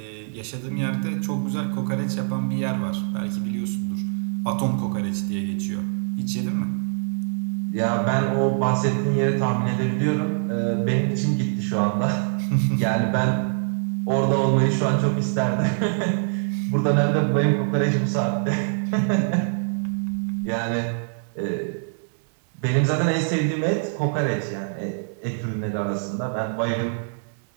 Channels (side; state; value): left; silent; digital silence